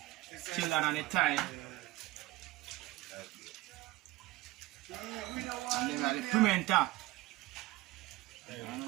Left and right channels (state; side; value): quieter; left; 19.4 dB